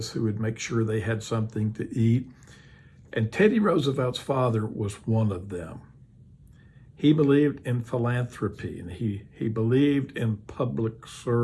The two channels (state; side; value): identical; both; correlation 1.00